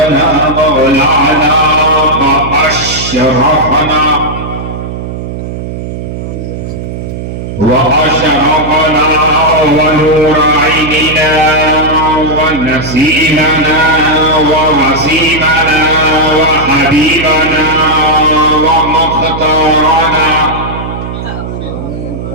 مولانا وأشرفنا وأشرقنا ونور عيننا ونسيمنا ووسيمنا وحبيبنا ومختارنا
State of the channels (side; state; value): right; noise; hum, 7 dB below the sound